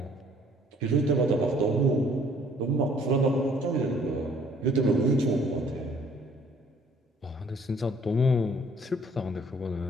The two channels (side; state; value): both; normal; correlation 0.58